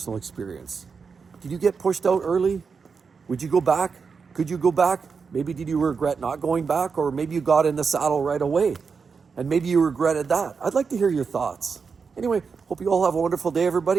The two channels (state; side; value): quieter; left; 5.4 dB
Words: experience. Did you get pushed out early? Would you go back? Could you go back? Maybe did you regret not going back? Or maybe you got in the saddle right away and maybe you regretted that. I'd like to hear your thoughts. Anyway, hope you all have a wonderful day,